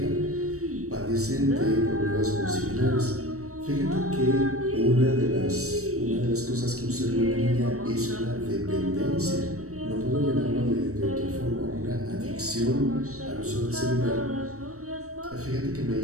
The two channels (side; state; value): left; late; 0.65 ms